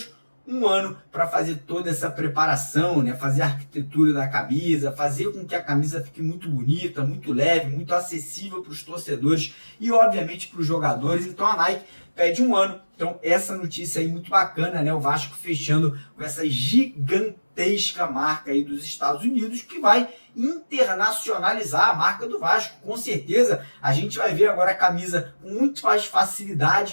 um ano para fazer toda essa preparação, né? Fazer a arquitetura da camisa, fazer com que a camisa fique muito bonita, muito leve, muito acessível para os torcedores e, obviamente, para os jogadores. Então, a Nike pede um ano. Então, essa notícia aí muito bacana, né? O Vasco fechando com essa gigantesca marca aí dos Estados Unidos, que vai internacionalizar a marca do Vasco. Com certeza, a gente vai ver agora a camisa com muito mais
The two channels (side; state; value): both; inverted; correlation -1.00